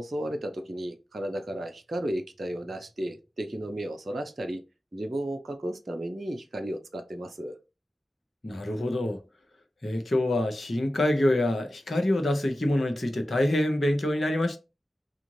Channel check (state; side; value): normal; both; correlation 0.93